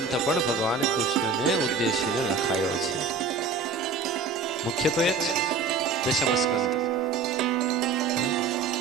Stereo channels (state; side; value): quieter; left; 4.7 dB